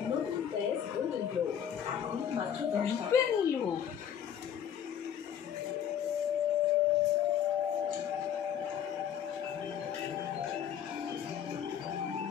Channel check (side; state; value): right; quieter; 9.1 dB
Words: নতুন প্রেস গোল্ডেন গ্লো এখন মাত্র 10 টাকা নিল।